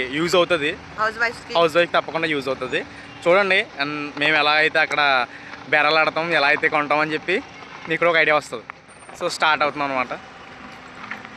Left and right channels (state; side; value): identical; both; correlation 1.00